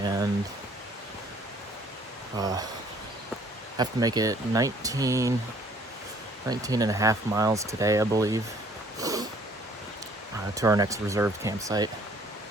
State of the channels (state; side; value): normal; both; correlation 0.59